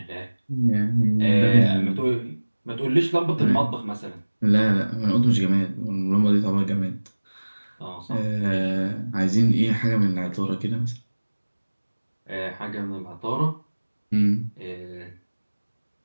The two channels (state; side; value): inverted; both; correlation -1.00